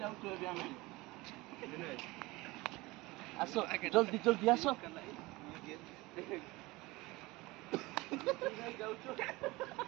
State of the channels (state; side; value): quieter; left; 21.7 dB